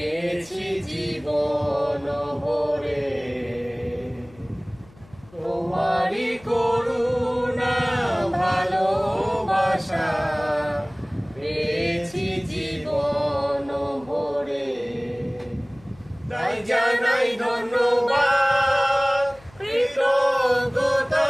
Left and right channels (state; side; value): noise; left; hum, 25 dB below the sound